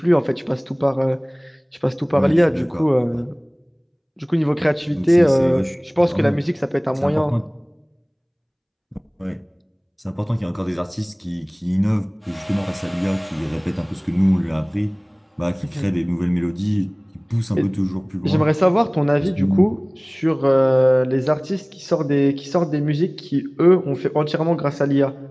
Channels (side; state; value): both; identical; correlation 1.00